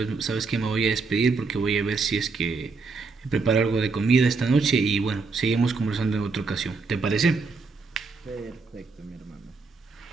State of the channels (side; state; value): left; quieter; 4.3 dB